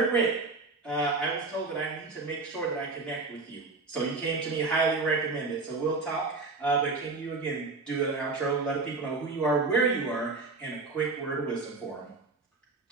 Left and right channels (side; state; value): left; quieter; 3.8 dB